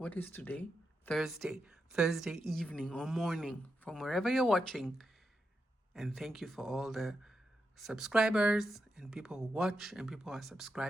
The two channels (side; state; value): both; normal; correlation 0.85